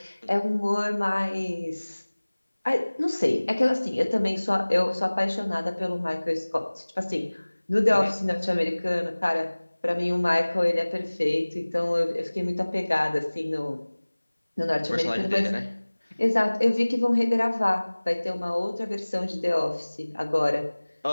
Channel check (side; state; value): both; inverted; correlation -1.00